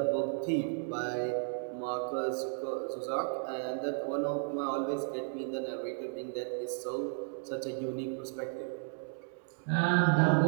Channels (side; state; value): left; silent; digital silence